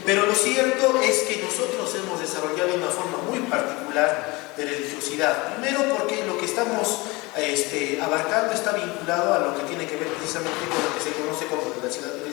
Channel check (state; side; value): quieter; right; 24.0 dB